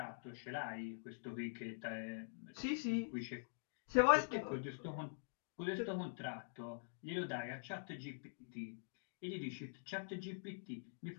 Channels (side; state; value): right; silent; digital silence